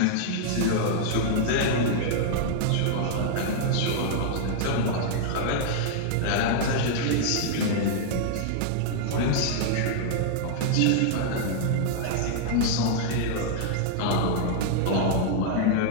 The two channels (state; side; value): different; both; correlation -0.01